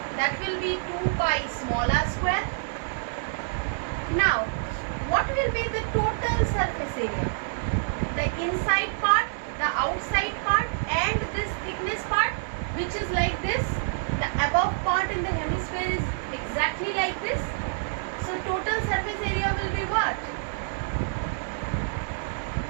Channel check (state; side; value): silent; left; digital silence